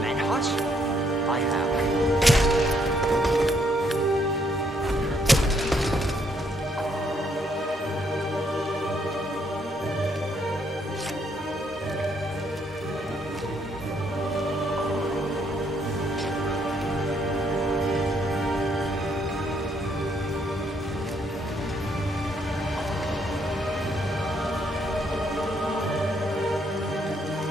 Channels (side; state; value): both; normal; correlation 0.71